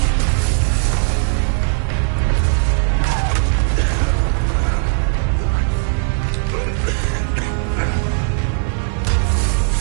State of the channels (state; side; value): silent; left; 60 dB below the other